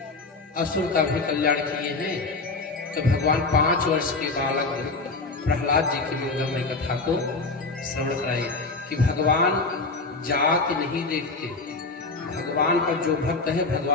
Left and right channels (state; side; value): quieter; right; 3.7 dB